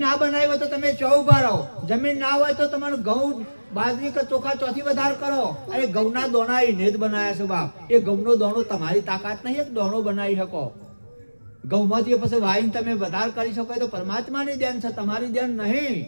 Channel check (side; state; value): both; inverted; correlation -1.00